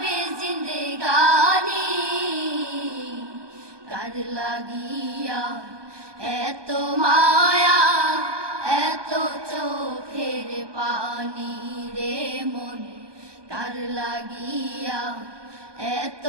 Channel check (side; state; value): left; late; 1.2 ms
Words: জিন্দেগানি, কার লাগিয়া এত মায়া, এত চোখের পানি রে মন। কার লাগিয়া এত